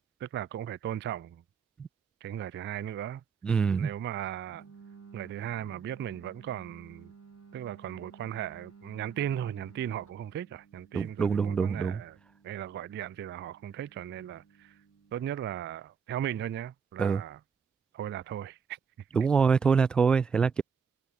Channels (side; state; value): left; quieter; 6.4 dB